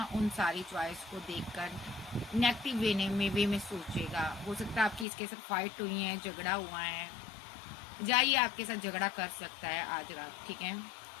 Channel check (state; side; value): drops out; right; at 5.1 s